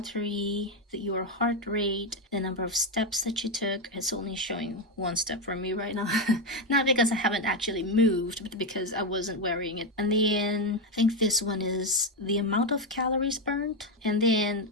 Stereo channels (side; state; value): both; normal; correlation 0.08